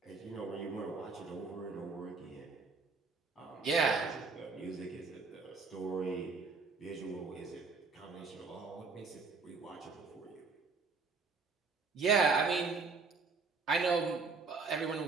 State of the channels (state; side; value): quieter; left; 4.4 dB